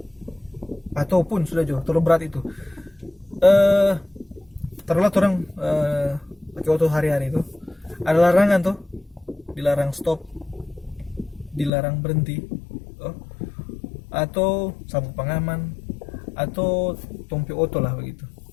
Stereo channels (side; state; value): right; drops out; at 11.7 s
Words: ataupun sudah jauh terlalu berat itu taruhlah orang pakai auto hari-hari itu ada larangan tuh, dilarang stop, dilarang berhenti, atau sabuk pengaman, atau tompi oto lah begitu.